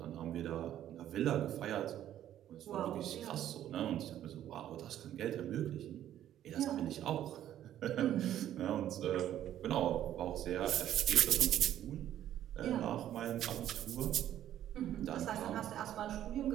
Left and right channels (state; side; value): quieter; left; 11.6 dB